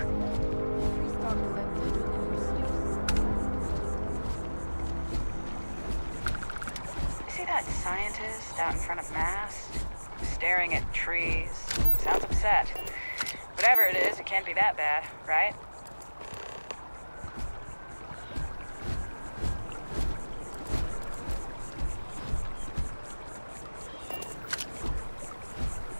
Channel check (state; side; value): inverted; both; correlation -1.00